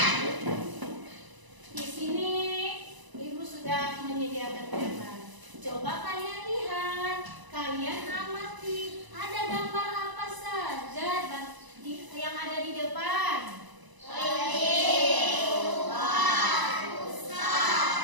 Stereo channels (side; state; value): left; late; 1.0 ms